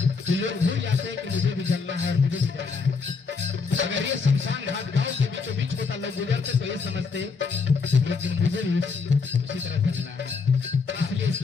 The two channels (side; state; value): right; quieter; 4.9 dB